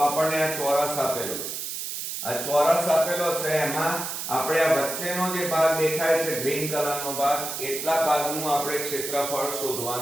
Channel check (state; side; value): noise; right; hiss, 5 dB below the sound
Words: આ ચોરસ આપેલો છે આ ચોરસ આપેલો છે એમાં આપણે આ વચ્ચેનો જે ભાગ દેખાય છે ગ્રીન કલરનો ભાગ એટલા ભાગનું આપણે ક્ષેત્રફળ